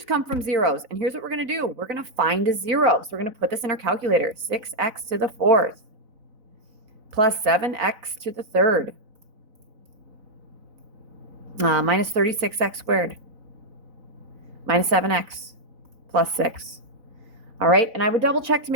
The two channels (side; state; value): left; late; 4.0 ms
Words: come from zeros. And here's what we're going to do. We're going to find a zero. So we're going to put this in our calculator. 6x to the 4th plus 7x to the 3rd minus 36x squared minus 7x plus 6. All right, and I would double check to